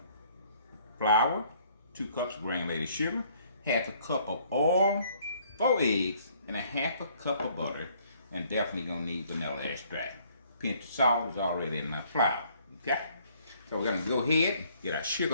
flour, 2 cups granulated sugar, half a cup of oil, 4 eggs, and a half a cup of butter, and definitely gonna need vanilla extract. Pinch of salt is already in my flour. Okay, so we're gonna go ahead, get our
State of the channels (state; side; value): inverted; both; correlation -0.62